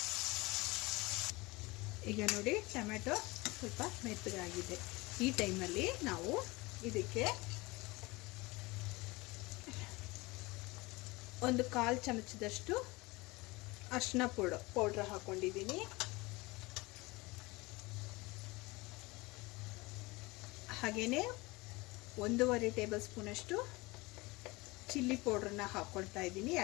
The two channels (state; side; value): quieter; right; 23.2 dB